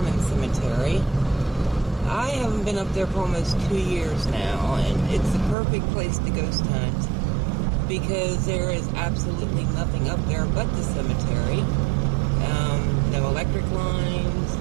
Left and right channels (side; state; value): left; drops out; at 5.6 s